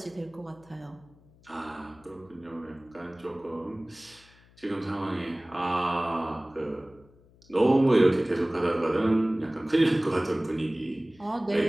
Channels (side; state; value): left; noise; hum, 28 dB below the sound